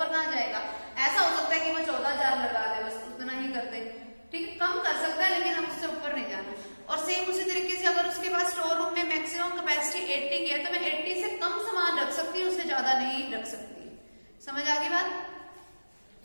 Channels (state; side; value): inverted; both; correlation -1.00